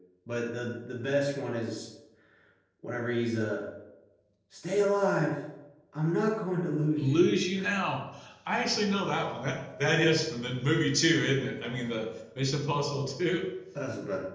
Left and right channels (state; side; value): identical; both; correlation 1.00